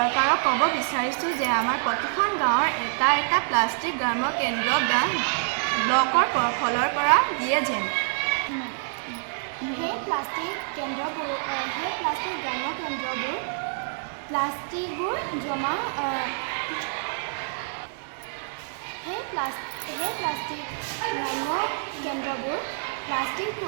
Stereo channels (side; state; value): left; silent; digital silence